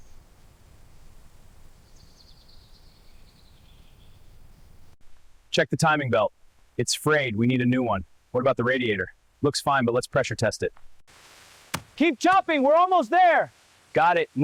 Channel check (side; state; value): both; identical; correlation 1.00